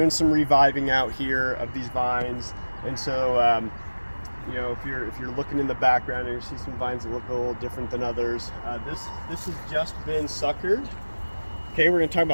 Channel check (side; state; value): both; inverted; correlation -1.00